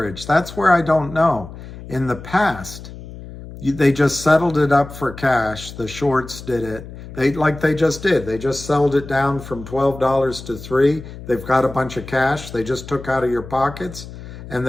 That's where I don't know. In the past, they just settled it up for cash. The shorts did it. They just did. They just settled it down from $12 to $3. They've got a bunch of cash. They just took out of your pockets, and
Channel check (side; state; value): left; noise; hum, 14 dB below the sound